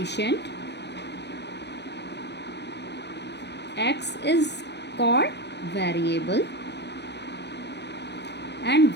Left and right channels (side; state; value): right; late; 0.50 ms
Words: x is called variable and